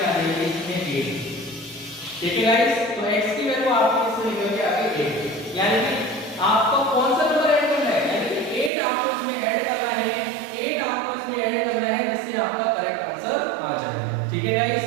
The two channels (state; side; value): drops out; left; at 8.7 s